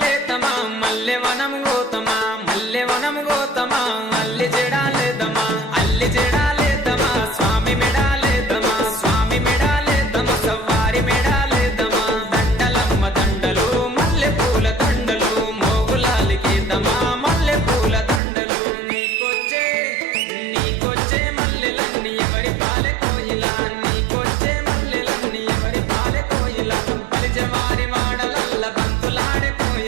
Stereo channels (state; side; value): drops out; left; at 18.2 s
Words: లేతమా మల్లె వనం గోతమా మల్లె వనం గోతమా అల్లి జడాలేదమా అల్లి జడాలేదమా స్వామి మెడాలేదమా స్వామి మెడాలేదమా సవ్వారి మెడాలేదమా దండలమ్మ దండలు మల్లె పూల దండలు మోగులాలికేదమా మల్లె పూల దండలు నీకొచ్చే మల్లెలన్నీ ఎవరి పాలె కోయిలా నీకొచ్చే మల్లెలన్నీ ఎవరి పాలె కోయిలా బలిజవారి వాడలల్ల బంతులాడే